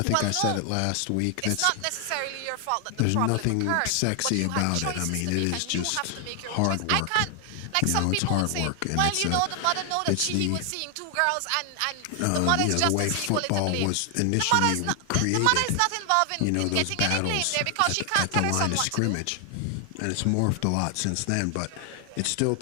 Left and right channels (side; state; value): both; different; correlation 0.00